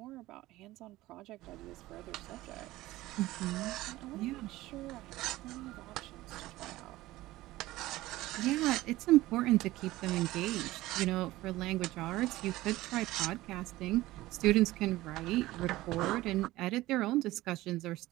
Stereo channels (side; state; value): left; quieter; 17.4 dB